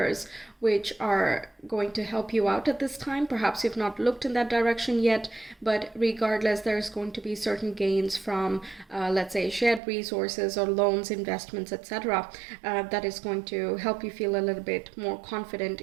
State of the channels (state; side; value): drops out; left; at 9.8 s